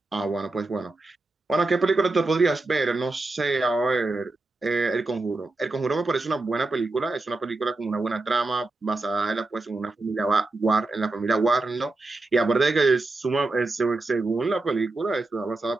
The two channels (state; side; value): quieter; left; 3.1 dB